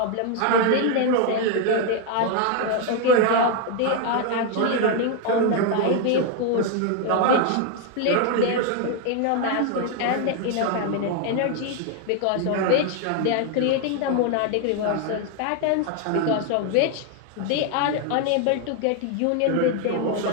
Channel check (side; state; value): both; different; correlation 0.01